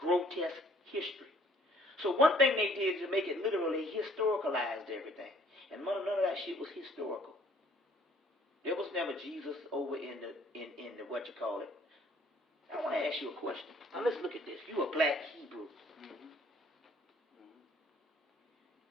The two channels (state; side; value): normal; both; correlation 0.59